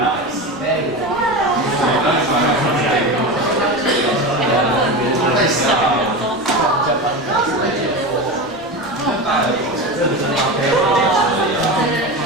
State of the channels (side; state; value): both; normal; correlation 0.23